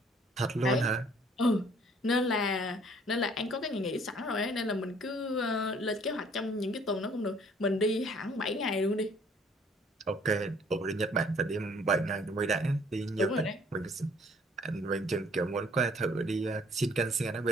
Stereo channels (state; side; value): normal; both; correlation 0.59